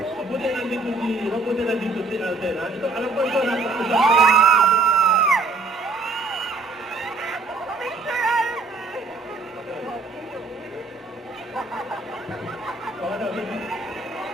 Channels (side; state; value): left; quieter; 3.6 dB